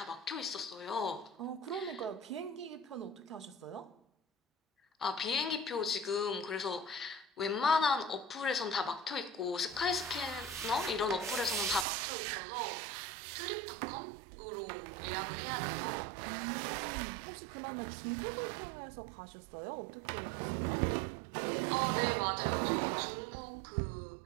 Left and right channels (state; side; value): drops out; left; at 11.9 s